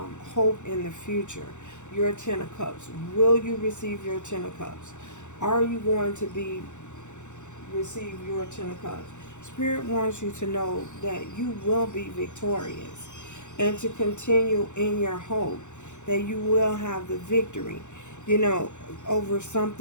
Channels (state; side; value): late; right; 0.84 ms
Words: hope in the future. Your Ten of Cups. Will you receive your Ten of Cups? Are you going to receive your Ten of Cups? Spirit wants you to know that you will be victorious, and to continue in your hope that you will have the victory, over